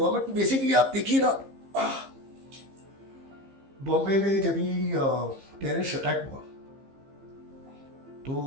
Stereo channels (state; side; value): late; left; 15 ms